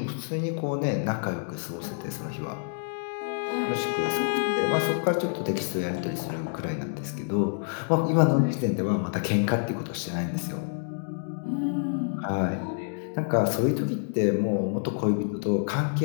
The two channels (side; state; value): right; silent; digital silence